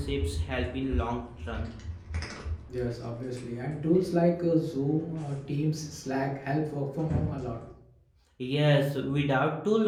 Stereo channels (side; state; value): both; identical; correlation 1.00